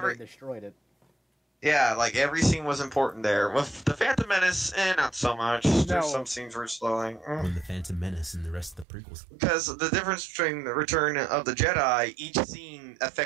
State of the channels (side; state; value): left; drops out; at 8.8 s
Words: they destroyed it. Yeah, like, every scene was important there. With the Phantom Menace, not so much. No. There's some scenes were slowing. When the Phantom Menace and the rest of the prequels. Because the difference between the Return of the Jedi, each scene